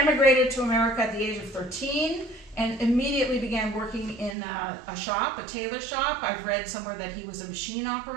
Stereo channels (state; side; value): drops out; left; at 4.4 s